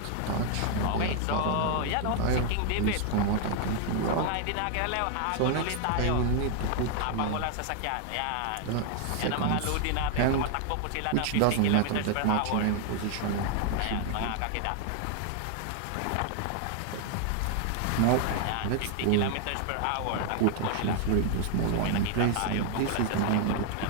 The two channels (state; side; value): different; both; correlation 0.00